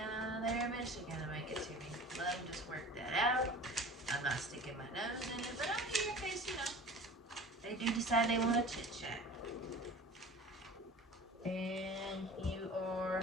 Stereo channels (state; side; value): normal; both; correlation 0.40